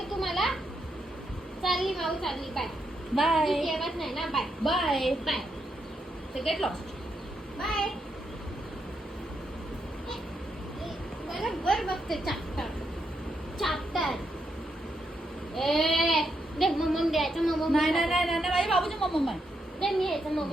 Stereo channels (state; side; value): normal; both; correlation 0.81